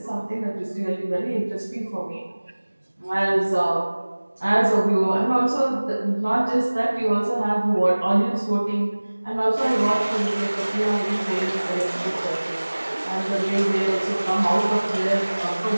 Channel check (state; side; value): inverted; both; correlation -1.00